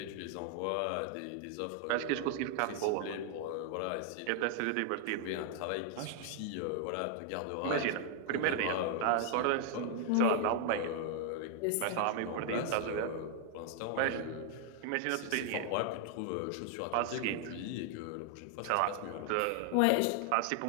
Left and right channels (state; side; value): different; both; correlation 0.00